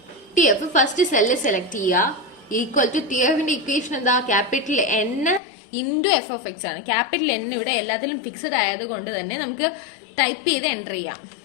F. First cell select ചെയ്യുക. ഈക്വൽ ടു ടി എഫിന്റെ ഇക്വേഷൻ എന്താ? Capital N into F of X ആണ്. ക്യാപിറ്റൽ എൻ ഇവിടെ എല്ലാത്തിലും ഫിക്സഡ് ആയതുകൊണ്ട് തന്നെ നമുക്ക് ടൈപ്പ് ചെയ്ത് എൻറ്റർ ചെയ്യാം.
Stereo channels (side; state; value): right; drops out; at 5.4 s